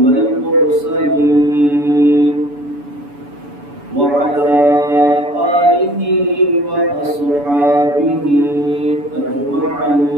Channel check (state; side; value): late; left; 7.0 ms